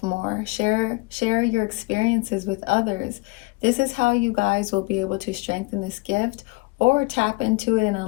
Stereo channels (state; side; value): quieter; right; 25.7 dB